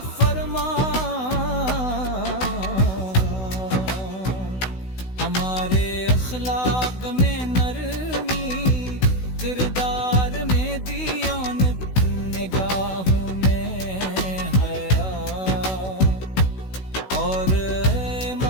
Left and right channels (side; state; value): right; late; 16 ms